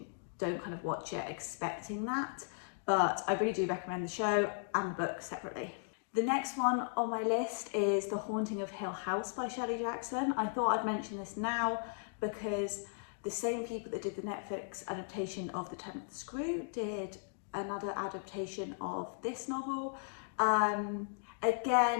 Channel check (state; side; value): silent; right; digital silence